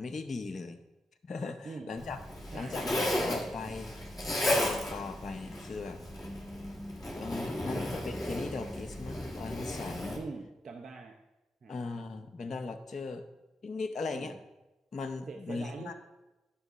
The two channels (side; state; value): both; normal; correlation 0.84